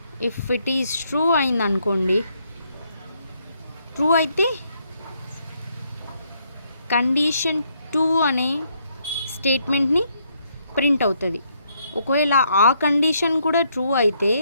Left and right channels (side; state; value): both; inverted; correlation -0.73